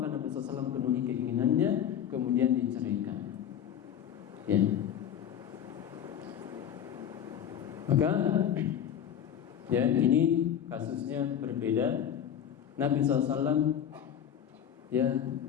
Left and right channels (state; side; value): quieter; right; 9.5 dB